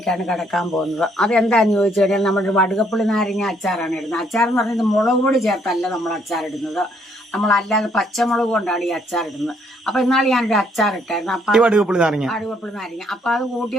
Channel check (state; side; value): normal; both; correlation 0.68